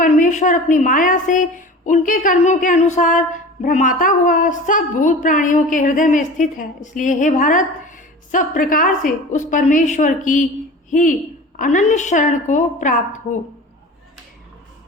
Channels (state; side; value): normal; both; correlation 0.37